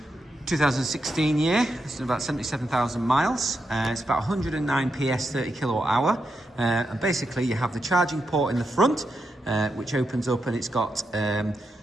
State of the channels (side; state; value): both; normal; correlation 0.85